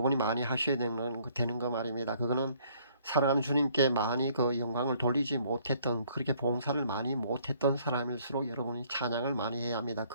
많이 하셔야 되는 거 말입니다. 그거는 사랑하는 주님께 많이 영광을 돌리지 못했던, 그렇게 봉사를 많이 못했던 사람일수록 여러분이 찬양을 많이 해야 합니다.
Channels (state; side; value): inverted; both; correlation -0.63